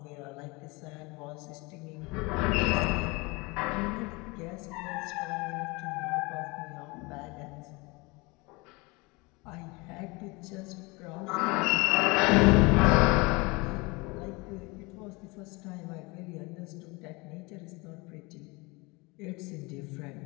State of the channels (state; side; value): quieter; right; 25.9 dB